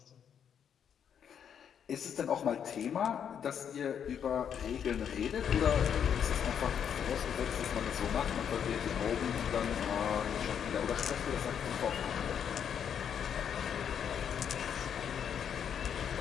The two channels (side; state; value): right; quieter; 8.2 dB